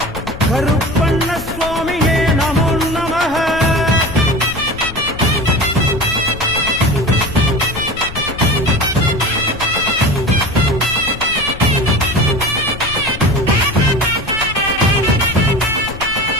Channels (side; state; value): left; noise; rumble, 13 dB below the sound